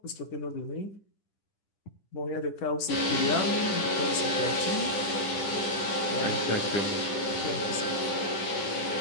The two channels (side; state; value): right; late; 10 ms